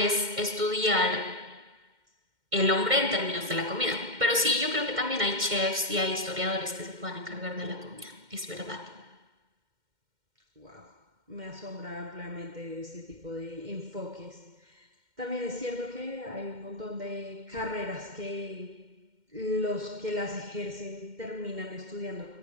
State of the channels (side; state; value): left; late; 2.1 ms